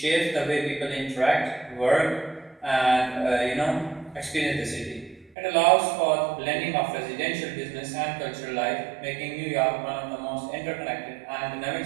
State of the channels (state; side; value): drops out; left; at 5.3 s